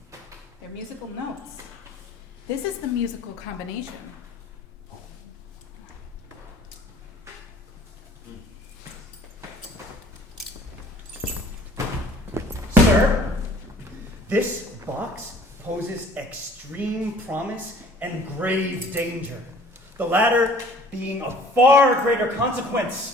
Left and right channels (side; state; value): both; normal; correlation 0.51